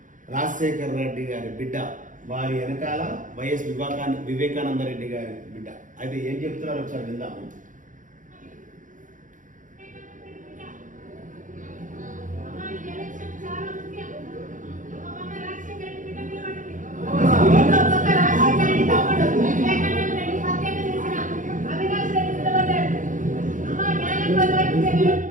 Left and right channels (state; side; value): late; left; 0.37 ms